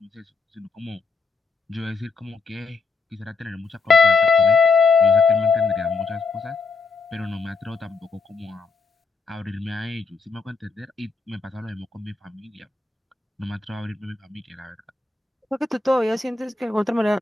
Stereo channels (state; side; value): quieter; right; 4.3 dB